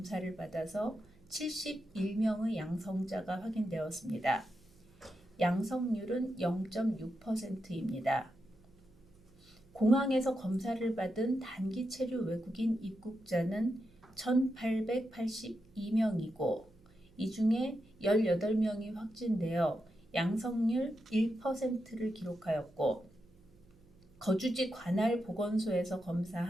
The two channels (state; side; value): noise; right; hum, 27 dB below the sound